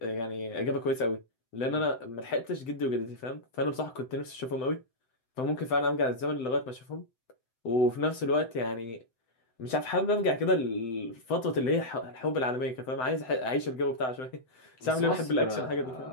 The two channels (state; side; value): late; right; 7.9 ms